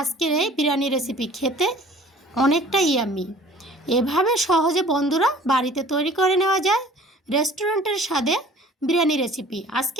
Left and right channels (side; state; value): both; normal; correlation 0.50